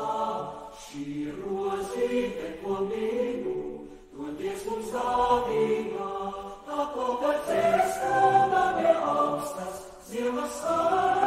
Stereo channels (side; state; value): both; identical; correlation 1.00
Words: šī rozīte, ko mīlu, to Dievs mums dāvina, tā plauka dziesma ne augstas, zievas